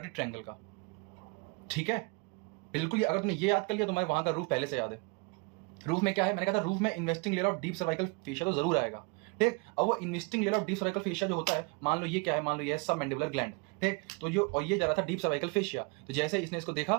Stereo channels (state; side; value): quieter; left; 30.6 dB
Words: ट्रायंगल का, ठीक है। बिल्कुल, अगर तुमने ये याद कर लिया तो मैं वहां का रूफ पहले से याद है। रूफ में क्या है? मैंने कहा था रूफ में investing layer of deep cervical fascia तो जरूर आएगा, ठीक। अब वो investing layer of deep cervical fascia जो होता है, मान लो ये क्या है? मान लो ये है सब मैंडिबुलर ग्लैंड, ठीक। तो जो और ये जा रहा था डीप सर्वाइकल फेशिया, तो जैसे इसने इसको